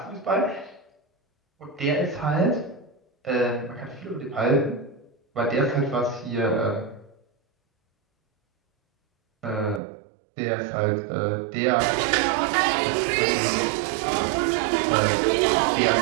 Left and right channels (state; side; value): drops out; left; at 9.8 s